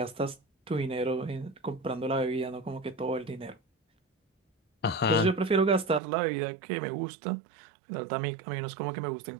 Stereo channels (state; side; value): drops out; left; at 6.0 s